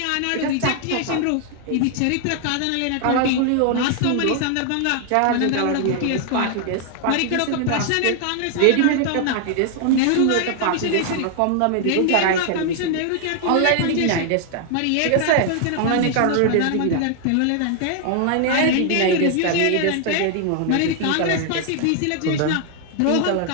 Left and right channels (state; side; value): different; both; correlation 0.00